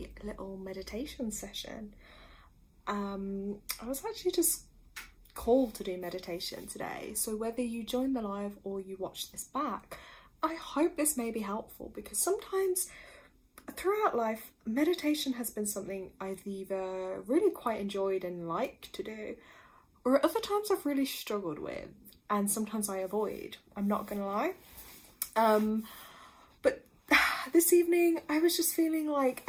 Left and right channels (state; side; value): identical; both; correlation 1.00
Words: little meditation session. I was actually just called to do meditation today, so whether you join the live or you watch this back, I hope this may be helpful, because sometimes throughout life, meditation has been something I've either really quite enjoyed and liked to do, or at other times I've really struggled with, and sometimes I avoid. I'm not gonna lie. But this evening I was just feeling like